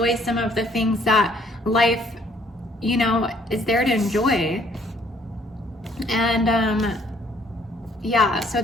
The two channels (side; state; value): both; normal; correlation 0.63